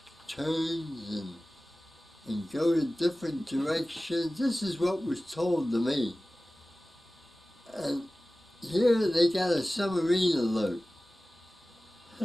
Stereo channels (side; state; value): both; normal; correlation 0.97